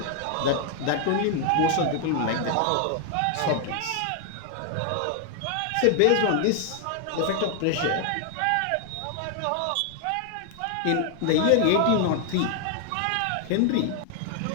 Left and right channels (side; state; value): both; different; correlation 0.00